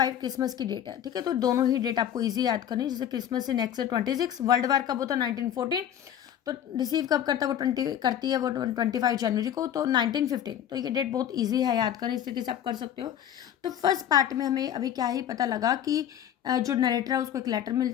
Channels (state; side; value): quieter; right; 10.2 dB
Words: क्रिसमस की डेट है, ठीक है। तो दोनों ही डेट आपको इजी याद करनी है, जैसे क्रिसमस से नेक्स्ट 26, वर्ल्ड वार कब होता है? 1914, तो रिसीव कब करता है वो 20 करती है वो 25 जनवरी को, तो 1915। तो ये डेट बहुत इजी है याद करनी, इस तरीके से आप कर सकते हो। तो फर्स्ट पार्ट में हमें अभी क्या ही पता लगा कि जो नरेटर है उसको एक लेटर